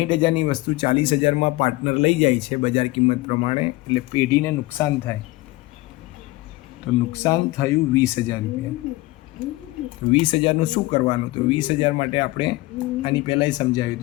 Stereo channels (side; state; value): right; quieter; 19.9 dB